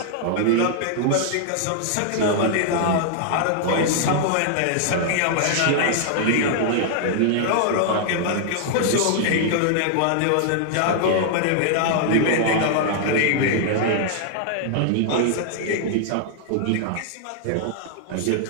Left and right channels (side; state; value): both; different; correlation -0.01